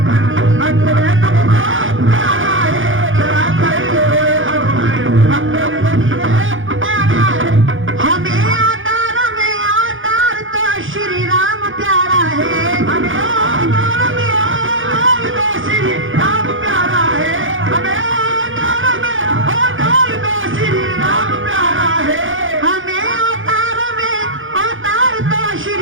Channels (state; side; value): late; left; 0.58 ms